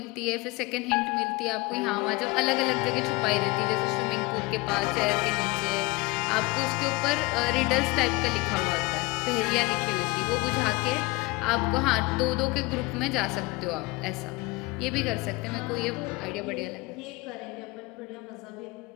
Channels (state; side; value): quieter; right; 23.7 dB